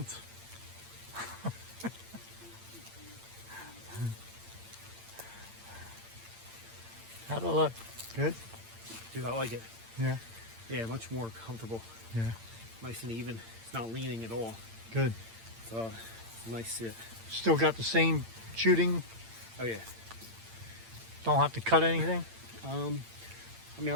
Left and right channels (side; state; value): left; late; 8.8 ms